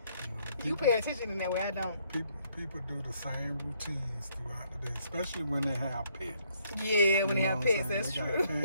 You pay attention in that way, I don't. People do the same routines throughout the day, especially when they have pets. Yeah, when they have pets, that's true.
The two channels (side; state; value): both; inverted; correlation -0.69